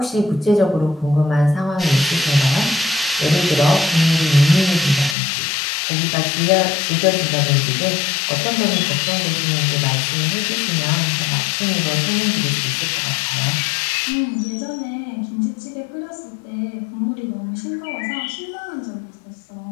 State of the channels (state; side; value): drops out; right; at 5.2 s